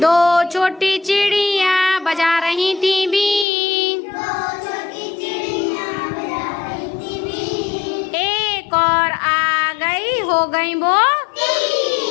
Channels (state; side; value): drops out; right; at 3.5 s